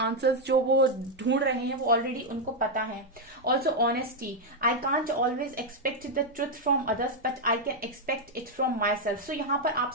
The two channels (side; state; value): both; normal; correlation 0.01